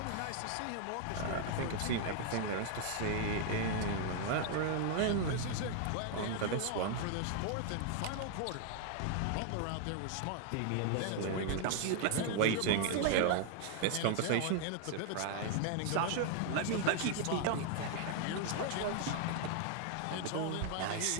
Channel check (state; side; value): different; both; correlation 0.00